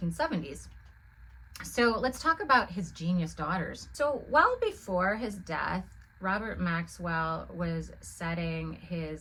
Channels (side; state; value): both; identical; correlation 1.00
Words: So let's talk about his genius daughters. So well before his death, Robert Maxwell was setting